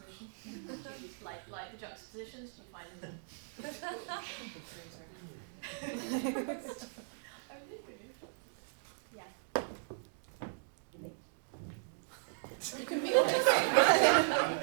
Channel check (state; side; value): silent; left; digital silence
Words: Do you like the juxtapositions? Do you find them difficult? Yeah. You can be honest.